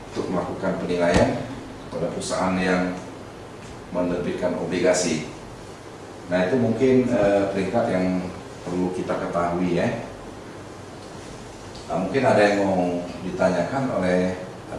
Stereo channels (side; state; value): both; identical; correlation 1.00